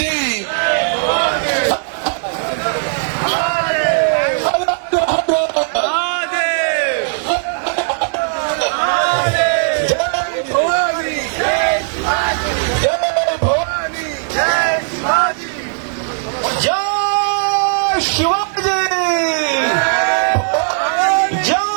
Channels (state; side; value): silent; left; 64 dB below the other